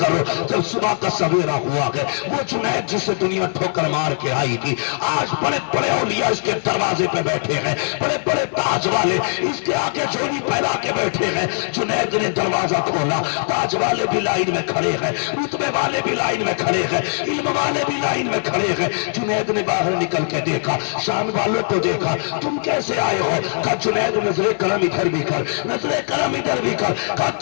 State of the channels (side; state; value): right; silent; digital silence